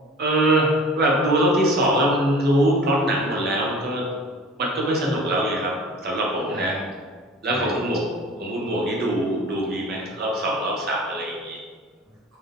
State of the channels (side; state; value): both; normal; correlation 0.43